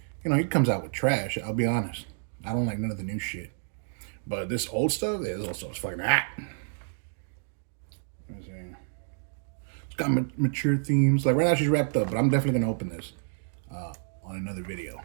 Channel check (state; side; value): silent; left; digital silence